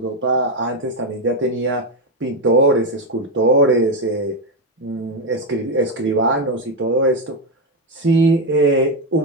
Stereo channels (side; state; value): both; normal; correlation 0.08